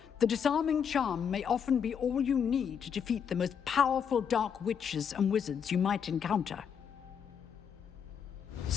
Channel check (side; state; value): right; quieter; 7.5 dB